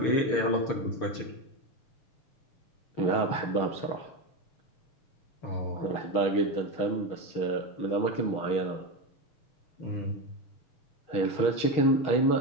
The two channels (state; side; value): late; right; 6.4 ms